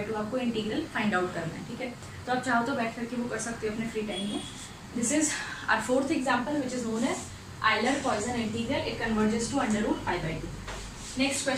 आपको इंटीग्रल फाइंड आउट करना है, ठीक है। तो आप चाहो तो बैठ करके वो कर सकते हो अपने फ्री टाइम में। This is our fourth example which is known as Euler Poisson integral, it converges to √π/2। Next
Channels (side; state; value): both; identical; correlation 1.00